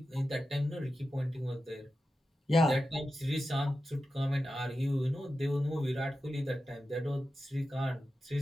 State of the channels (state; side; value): normal; both; correlation 0.92